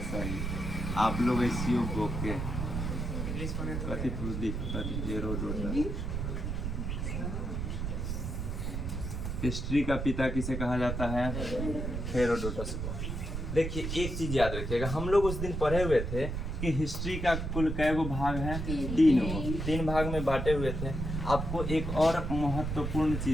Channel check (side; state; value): right; noise; rumble, 3 dB below the sound